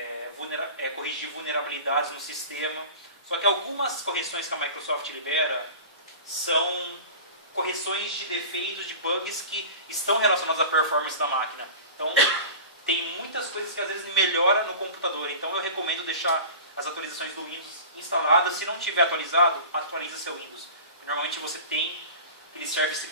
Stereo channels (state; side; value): inverted; both; correlation -0.36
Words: corrigir vulnerabilidades no sistema. Só que algumas correções que a Microsoft libera são correções de defeitos, de bugs que estão relacionados à performance da máquina. Então, tem muitas coisas que às vezes melhoram no computador. Então, eu recomendo deixar as atualizações do Windows instaladas. Se não tiver atualizado, atualiza seu Windows. Normalmente você tem aqueles service